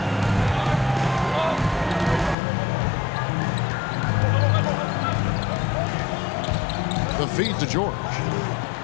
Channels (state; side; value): drops out; right; at 2.4 s